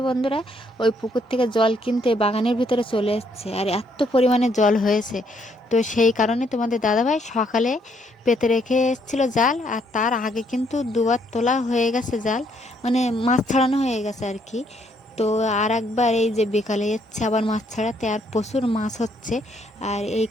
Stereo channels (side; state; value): both; normal; correlation 0.70